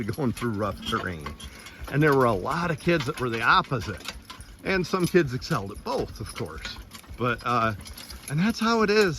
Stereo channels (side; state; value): both; identical; correlation 1.00